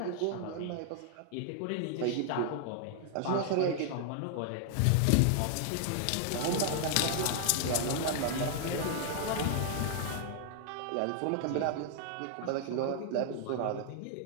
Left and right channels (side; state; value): both; different; correlation 0.00